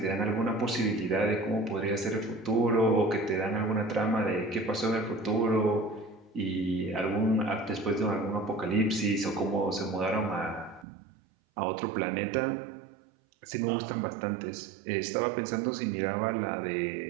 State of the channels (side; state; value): left; drops out; at 10.9 s